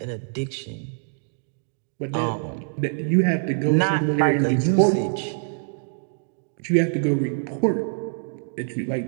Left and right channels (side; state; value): left; silent; digital silence